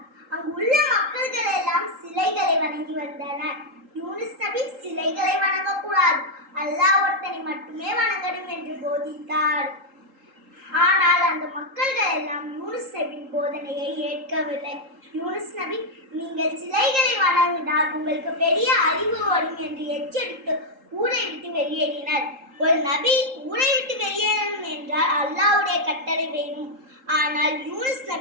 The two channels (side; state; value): left; late; 3.8 ms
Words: அங்கு உள்ள மக்கள்கள் எல்லாம் சிலைகளை வணங்கி வந்தனர். யூனுஸ் நபி சிலைகளை வணங்கக்கூடாது, அல்லாஹ் ஒருத்தனை மட்டுமே வணங்கணும் என்று போதித்தார். ஆனால் அந்த மக்கள்கள் எல்லாம் யூனுஸ் நபியின் போதனையை ஏற்கவில்லை. யூனுஸ் நபி, நீங்கள் சிலைகளை வணங்கினால் உங்களுக்கு பெரிய அறிவு வரும் என்று எச்சரித்து ஊரை விட்டு வெளியேறினர். ஒரு நபி ஊரை விட்டு வெளியேறணும் என்றால் அல்லாஹ்வுடைய கட்டளை வேணும். ஆனால் யூனுஸ்